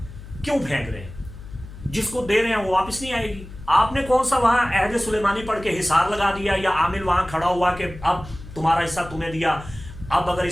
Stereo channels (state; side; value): noise; left; hum, 15 dB below the sound